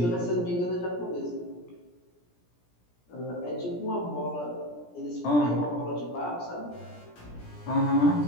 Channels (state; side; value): late; right; 17 ms